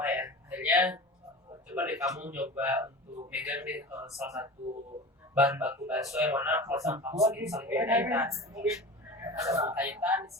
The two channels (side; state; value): both; normal; correlation 0.33